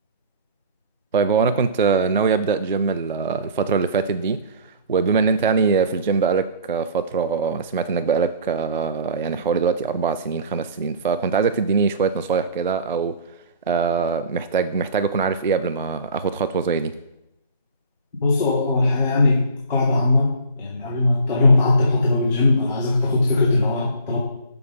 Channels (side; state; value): both; inverted; correlation -0.44